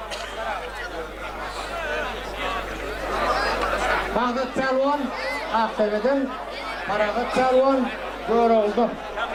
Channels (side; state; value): both; identical; correlation 1.00